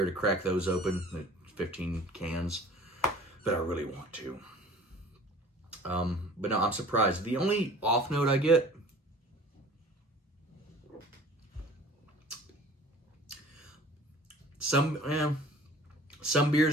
to crack those open, 15 cans. But I really want to. But no, I'm surprised. The only off note I get, some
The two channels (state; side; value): normal; both; correlation 0.47